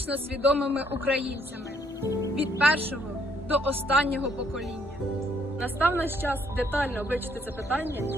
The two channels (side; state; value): both; normal; correlation 0.68